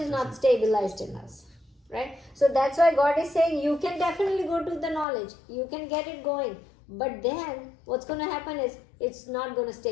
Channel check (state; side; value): drops out; right; at 5.1 s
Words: not stabilized in us, right? So that's why God is saying you can definitely go to the knowledge. You can get it going. But then what's going to happen is it's not going to